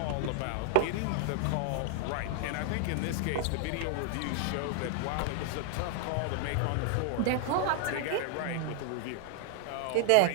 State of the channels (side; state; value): both; different; correlation 0.00